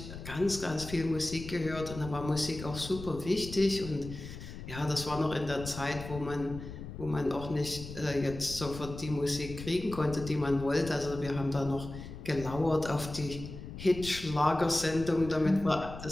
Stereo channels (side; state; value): left; noise; rumble, 11 dB below the sound